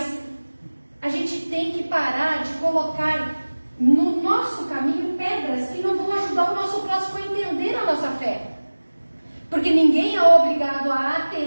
a gente tem que parar de colocar no nosso caminho pedras que não vão ajudar o nosso próximo a entender a nossa fé. Porque ninguém é obrigado a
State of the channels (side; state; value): both; inverted; correlation -1.00